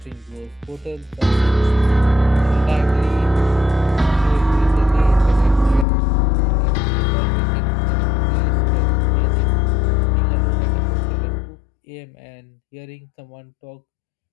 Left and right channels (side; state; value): right; drops out; at 5.9 s